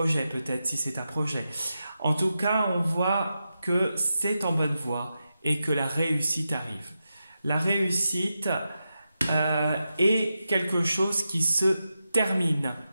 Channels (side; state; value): both; inverted; correlation -0.89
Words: peut-être, si c'est un projet. En tout cas, on voit que c'est en bonne voie et que la réussite arrive. La réussite est quelque chose qui se termine.